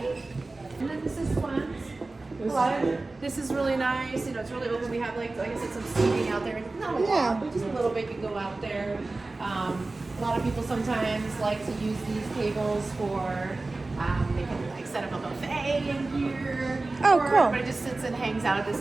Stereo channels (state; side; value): quieter; left; 3.3 dB